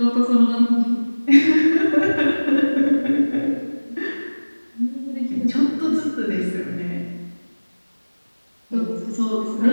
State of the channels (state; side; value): inverted; both; correlation -1.00